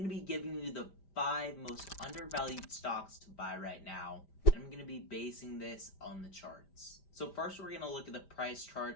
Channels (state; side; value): late; right; 5.1 ms